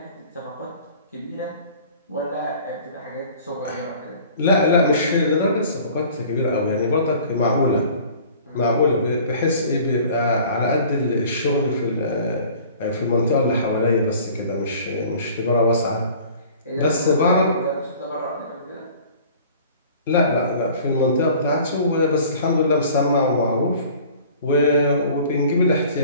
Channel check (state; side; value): inverted; both; correlation -0.48